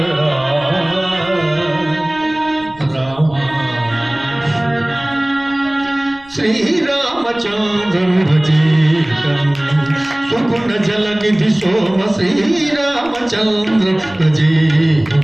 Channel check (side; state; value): right; noise; rumble, 26 dB below the sound